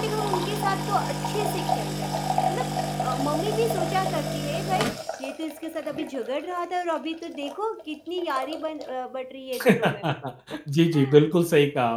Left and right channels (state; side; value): identical; both; correlation 1.00